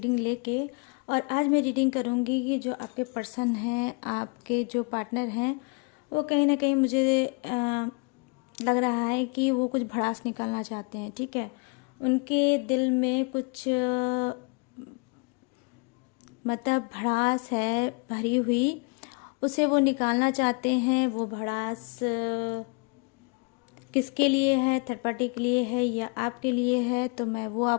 लेके। और आज मैं रीडिंग करूँगी कि जो आपके पर्सन हैं, आपके जो पार्टनर हैं, वो कहीं ना कहीं मुझे लग रहा है कि वो कुछ भड़ास निकालना चाहते हैं। ठीक है, उनके दिल में कुछ मतलब भड़ास है भरी हुई, उसे वो निकालना चाहते हैं। वो भड़ास किसके लिए है, थर्ड पार्टी के लिए है या आपके लिए है, तो मैं वो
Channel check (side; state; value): right; quieter; 32.5 dB